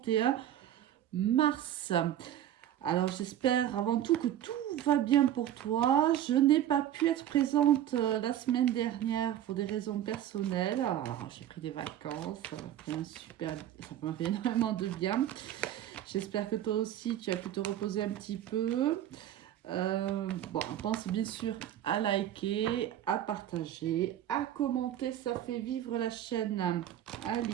mars. Alors, j'espère avant tout que tout va bien pour toi. Je n'ai pas pu être présente la semaine dernière pour des raisons personnelles. Alors, j'ai pris des vacances, ça m'a fait énormément de bien. J'espère que toi aussi, tu as pu te reposer un petit peu. Bon, pense bien sûr à liker, à partager, à commenter, ça fait vivre la chaîne. Allez,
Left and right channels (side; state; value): left; quieter; 11.5 dB